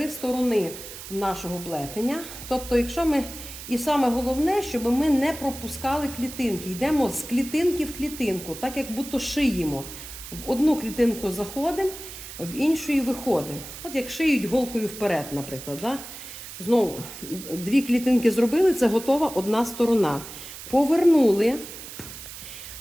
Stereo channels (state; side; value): noise; right; hiss, 12 dB below the sound